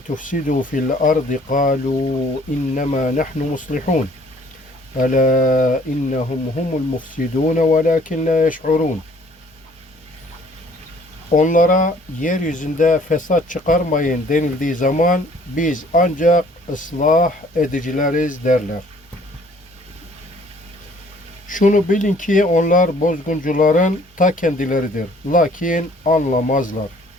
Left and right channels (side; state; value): both; normal; correlation 0.57